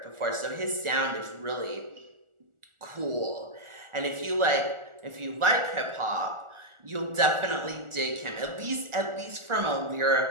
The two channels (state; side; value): late; left; 1.4 ms